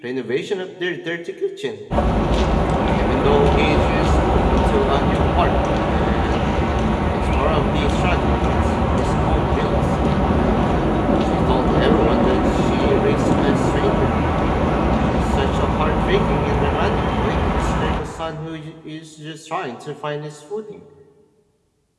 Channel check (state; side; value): identical; both; correlation 1.00